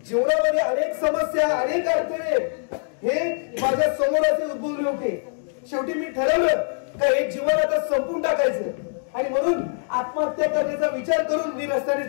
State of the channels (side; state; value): right; silent; digital silence